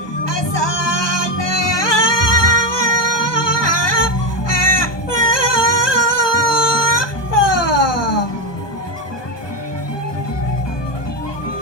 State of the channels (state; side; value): late; right; 1.2 ms